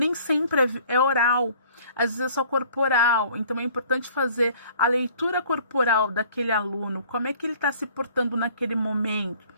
sempre é oral, às vezes é só corporal, então é importante fazer a leitura corporal daquele aluno, como é que ele está se portando naquele momento.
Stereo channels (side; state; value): both; inverted; correlation -0.53